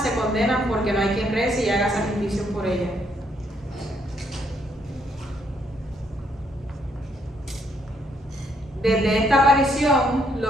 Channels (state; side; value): normal; both; correlation 0.72